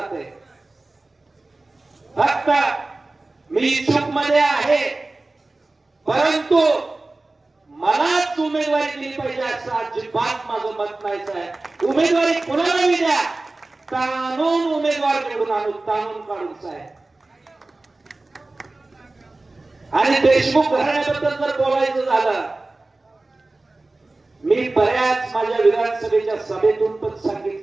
फक्त मी चूक मध्ये आहे, परंतु मलाच उमेदवारी दिली पाहिजे असं अजिबात माझं मत नाहीच आहे. उमेदवारी कोणालाही द्या, ताणून उमेदवार निवडून आणू, ताणून काढून साहेब. आणि देशमुख घराण्याबद्दल जर बोलायचं झालं, मी बऱ्याच माझ्या विधानसभेच्या सभेतून पण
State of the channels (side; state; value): left; quieter; 3.1 dB